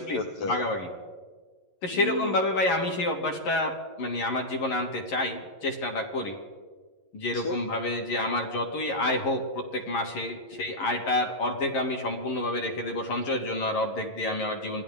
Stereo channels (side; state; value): right; late; 11 ms